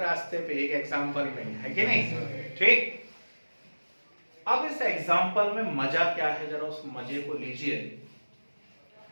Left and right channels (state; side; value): inverted; both; correlation -1.00